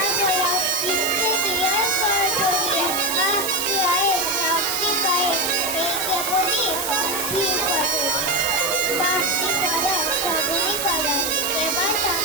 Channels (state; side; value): noise; right; hiss, 3 dB below the sound